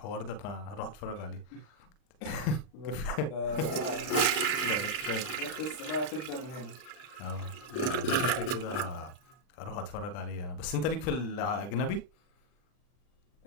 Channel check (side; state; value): right; late; 39 ms